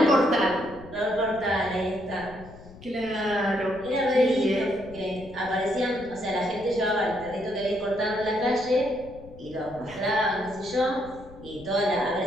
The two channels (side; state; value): left; noise; rumble, 19 dB below the sound